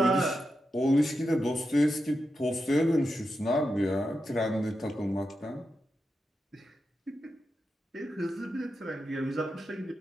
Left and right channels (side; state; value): both; normal; correlation 0.88